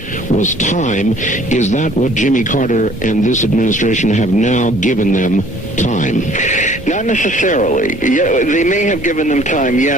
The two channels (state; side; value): normal; both; correlation 0.55